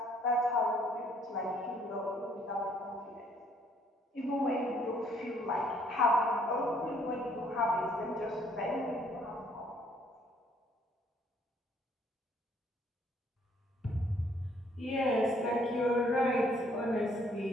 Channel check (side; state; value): both; normal; correlation 0.64